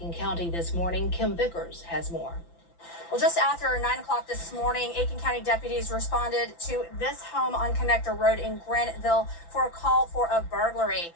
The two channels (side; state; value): right; late; 5.9 ms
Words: County this morning. Kim Vickers has more. Well, just after 9 o'clock this morning, Aiken County deputies responded to this home on Connector Road in Graniteville for a call for a burglary.